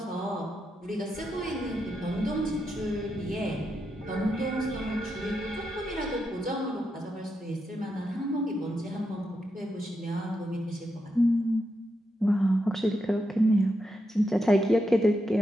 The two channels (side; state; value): both; normal; correlation 0.84